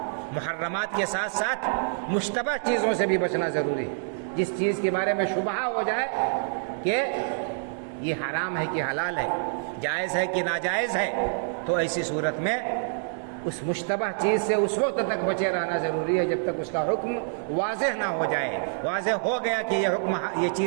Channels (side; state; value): left; silent; digital silence